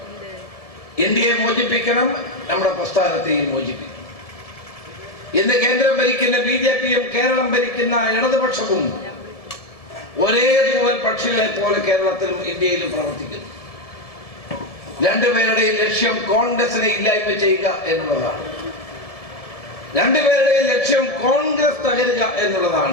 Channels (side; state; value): right; late; 1.6 ms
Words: ഇന്ത്യയെ മോചിപ്പിക്കണം, നമ്മുടെ പ്രസ്ഥാനത്തെയും മോചിപ്പിക്കണം. ഇന്ന് കേന്ദ്രം ഭരിക്കുന്ന BJPയും കേരളം ഭരിക്കുന്ന ഇടതുപക്ഷവും ഒരേ തൂവൽ പക്ഷികളെ പോലെ കേരളത്തിലും ഇന്ത്യയിലും പ്രവർത്തിക്കുന്നു. രണ്ടുപേരുടെയും ലക്ഷ്യം കോൺഗ്രസിനെ ഇല്ലായ്മ ചെയ്യുക എന്നുള്ളതാണ്. രണ്ടുപേരുടെയും ലക്ഷ്യം കോൺഗ്രസ് തകരുക